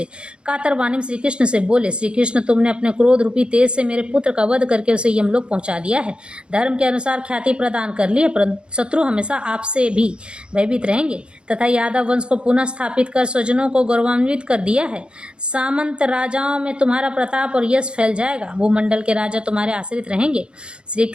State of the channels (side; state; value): left; late; 0.054 ms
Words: कातर वाणी में श्री कृष्ण से बोले, श्री कृष्ण, तुमने अपने क्रोध रूपी तेज से मेरे पुत्र का वध करके उसे यमलोक पहुंचा दिया है, धर्म के अनुसार ख्याति प्रदान कर ली है, परंतु शत्रु हमेशा आपसे भी भयभीत रहेंगे तथा यादव वंश को पुनः स्थापित कर स्वजनों को गौरवान्वित कर दिया है। सामंत राजाओं में तुम्हारा प्रताप और यश फैल जाएगा, भूमंडल के राजा तुम्हारे आश्रित रहेंगे। श्री